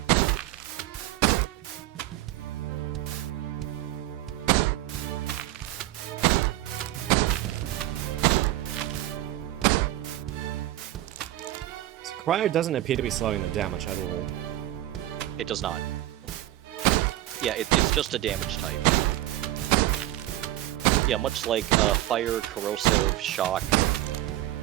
So Cryo doesn't appear to be slowing them down much at all. It does not. Yeah, it's just a damage type. Yeah, much like fire, corrosive, shock.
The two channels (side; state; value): left; quieter; 15.2 dB